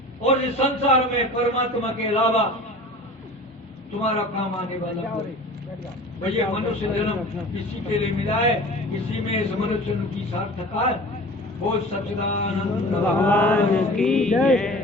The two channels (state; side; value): normal; both; correlation 0.40